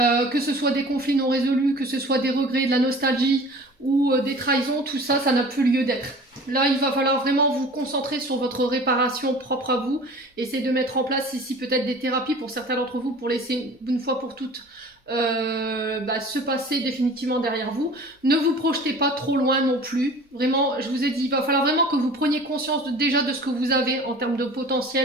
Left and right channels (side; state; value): both; normal; correlation 0.43